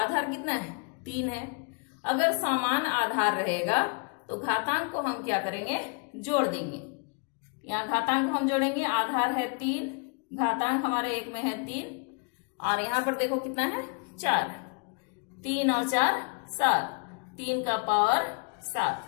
कितना है? 3 है। अगर समान आधार रहेगा तो घातांक को हम क्या करेंगे? जोड़ देंगे। यहाँ घातांक को हम जोड़ेंगे, आधार है 3, घातांक हमारे 1 में है 3, और यहाँ पर देखो कितना है 4, 3 और 4 7, 3 का पावर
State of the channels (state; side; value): quieter; right; 35.9 dB